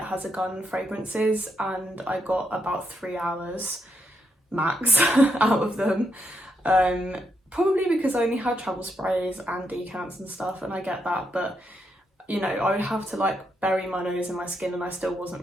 Has a Gun fragrances and I got about 3 hours max out of them. Probably because I only had travel sprays and decants and stuff, and I get that, but you know, I would have to like bury my nose in my skin and I still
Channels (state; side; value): normal; both; correlation 0.80